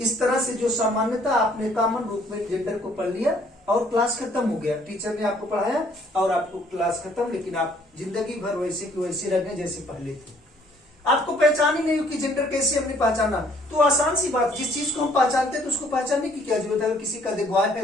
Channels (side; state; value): both; normal; correlation 0.61